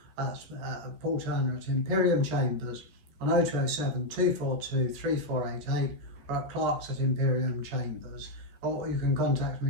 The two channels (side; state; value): left; late; 14 ms